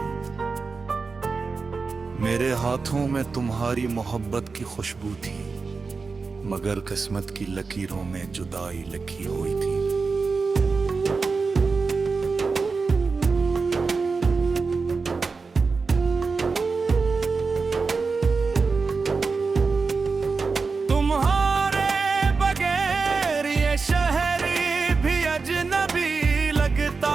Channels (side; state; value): left; quieter; 4.5 dB